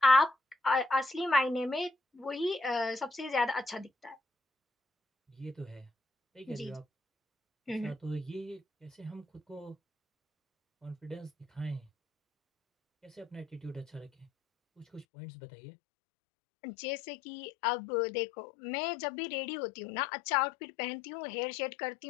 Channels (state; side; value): drops out; right; at 15.1 s